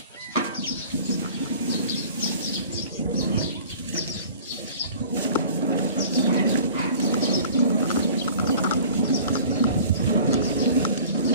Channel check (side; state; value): both; inverted; correlation -0.46